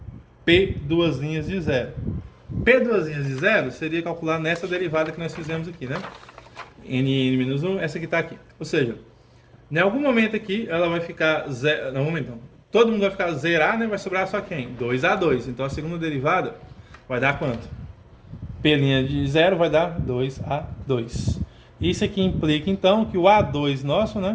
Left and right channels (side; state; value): both; identical; correlation 1.00